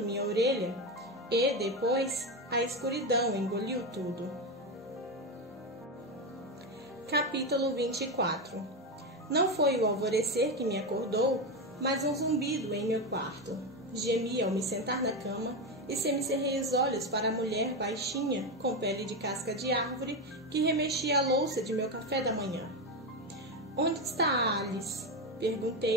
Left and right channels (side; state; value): both; normal; correlation 0.14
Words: minha orelha, e depois a escuridão engoliu tudo. Capítulo 24. Não foi o alvorecer que me acordou, mas um zumbido em meu quarto. Gemi ao me sentar na cama e semicerrei os olhos para a mulher baixinha, com pele de casca de árvore, que remexia a louça de meu café da manhã. Onde está a Alice?